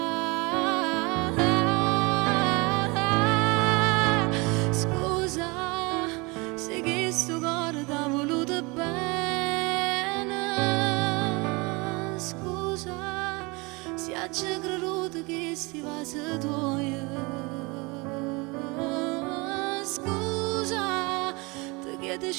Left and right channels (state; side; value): quieter; left; 26.5 dB